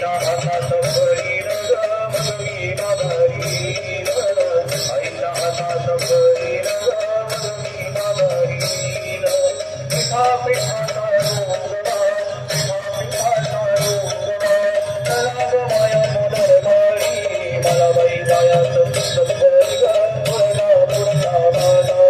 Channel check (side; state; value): both; identical; correlation 1.00